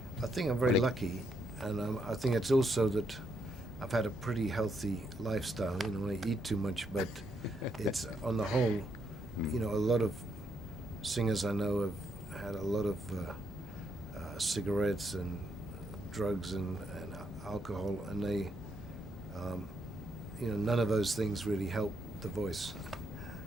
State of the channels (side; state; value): both; normal; correlation 0.76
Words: I think I'm very Really? lucky, and I think it's also that I've had a pretty healthy lifestyle. You know, I eat too much, but it's on the whole, you know, a lot of singers I know have had a lot of cigarettes and drugs and alcohol, and they, you know, none of those things really help the voice,